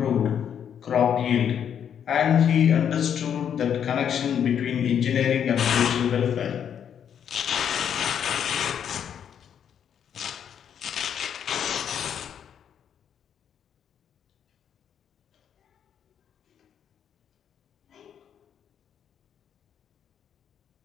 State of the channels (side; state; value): right; quieter; 8.6 dB